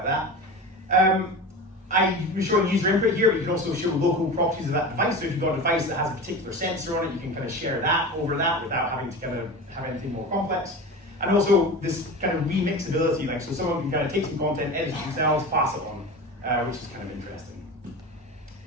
that. I'm showing user input here, but you can also show local properties of that device. So if you've got a device that has a particular sensor on it, you can kind of share that over that without having to kind of have anything more complex. And also this kind of remixability, like so someone can kind of take some content, edit it themselves, pass it on, which is kind of interesting.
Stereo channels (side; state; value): both; normal; correlation 0.29